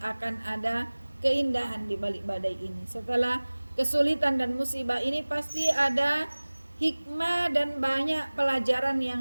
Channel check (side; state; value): both; inverted; correlation -1.00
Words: ada keindahan di balik badai ini. Setelah kesulitan dan musibah ini pasti ada hikmah dan banyak pelajaran